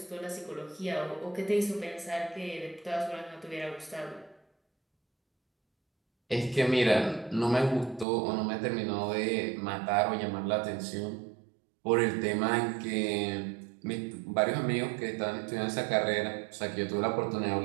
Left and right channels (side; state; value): left; drops out; at 8.1 s